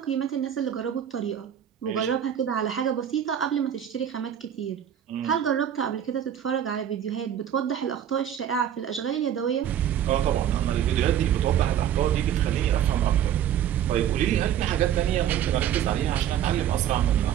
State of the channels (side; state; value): left; quieter; 10.0 dB